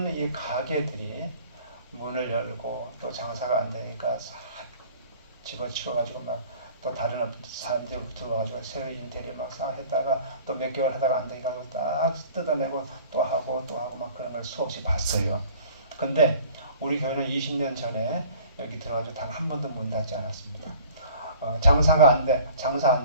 이 가게들이 문을 열고 또 장사가 안 되니까 싹 집어치워가지고 막 또 다른 사람들이 들어와가지고 새로 인테리어 막 싹 했다가 또 몇 개월 하다가 안 되니까 딱 뜯어내고 또 하고 막 그런 걸 수없이 봤어요. 근데 우리 교회는 20년 전에 여기 들어가지고 단 한 번도 문 닫지 않았습니다. 장사 안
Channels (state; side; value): inverted; both; correlation -0.49